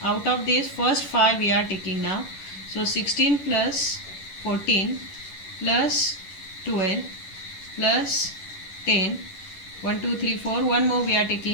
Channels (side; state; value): right; late; 11 ms